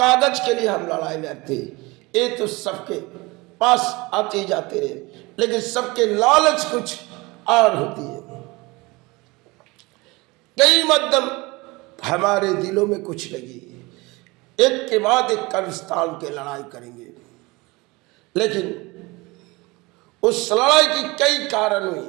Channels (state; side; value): quieter; left; 23.6 dB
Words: के लिए हम लड़ाई लड़ते ये तो सबके पास आते जाते रहे, लेकिन सबके लालच कुछ और होती है। कई मध्यम हमारे दिलों में कुछ लगी, एक के बाद एक कर्मस्थान के लड़ाई करेंगे, लेकिन उस लड़ाई की कई कारण हुई।